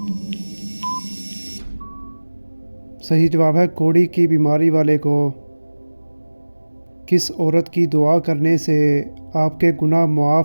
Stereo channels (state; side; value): inverted; both; correlation -1.00